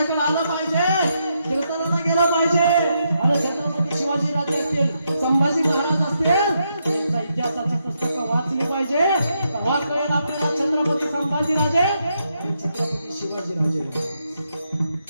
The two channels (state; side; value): inverted; both; correlation -0.80